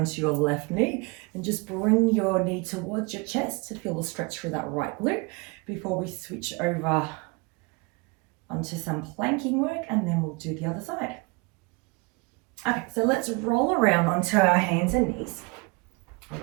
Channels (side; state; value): left; quieter; 28.1 dB